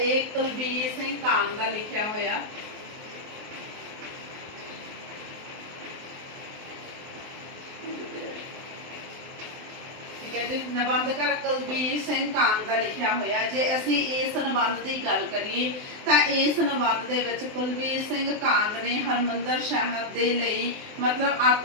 कुलबीर सिंह कांग का लिखिया होया। ठीक है जी, निबंधकार कुलबीर सिंह कांग का लिखिया होया। जे असी इस निबंध की गल करिए तो इस निबंध दे विच कुलबीर सिंह कांग ने हरमंदर साहिब दे लई मतलब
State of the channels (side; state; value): left; late; 23 ms